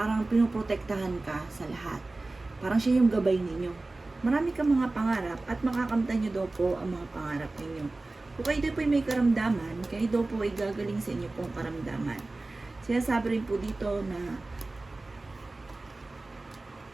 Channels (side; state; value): left; quieter; 3.1 dB